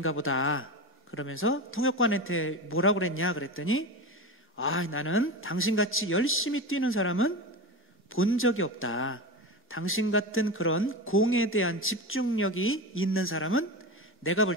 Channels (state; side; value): normal; both; correlation 0.23